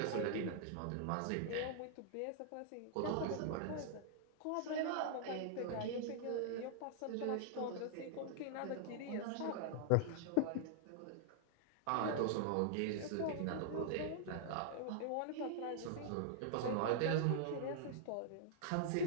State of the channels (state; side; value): different; both; correlation -0.01